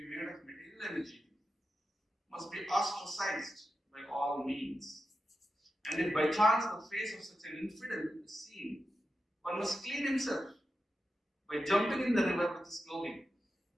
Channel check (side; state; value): both; normal; correlation 0.90